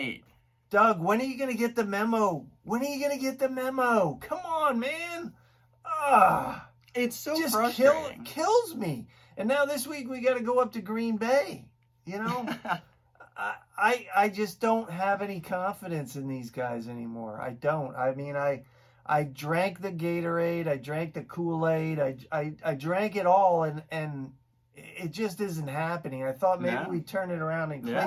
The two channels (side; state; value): both; identical; correlation 1.00